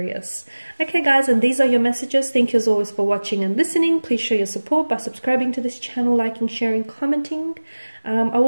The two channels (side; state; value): both; inverted; correlation -1.00